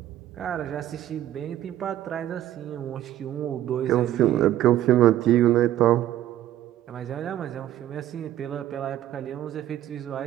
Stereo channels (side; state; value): left; quieter; 12.9 dB